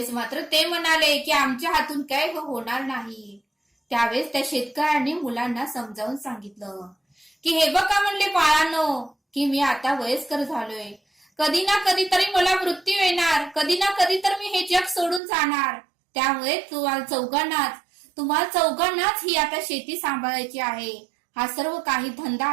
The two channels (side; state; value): left; drops out; at 15.2 s